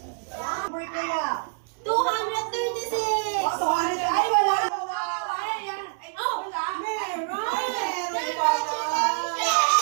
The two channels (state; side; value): silent; left; 58 dB below the other